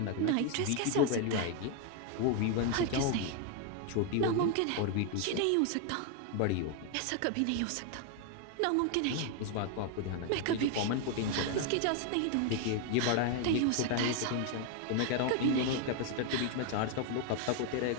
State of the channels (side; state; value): both; different; correlation 0.01